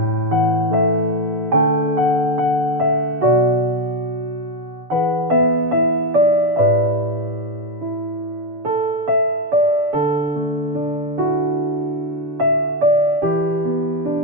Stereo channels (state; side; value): late; left; 7.0 ms